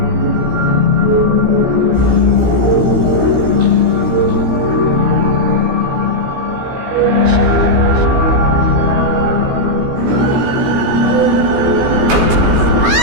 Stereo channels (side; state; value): left; late; 16 ms